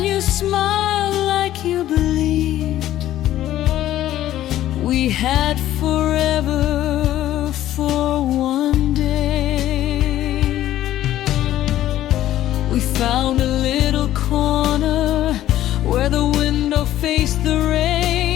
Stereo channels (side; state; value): right; quieter; 13.2 dB